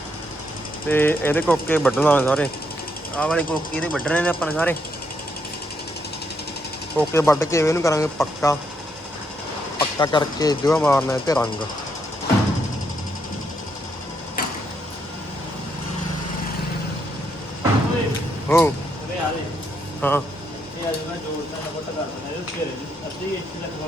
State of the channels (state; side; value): normal; both; correlation 0.77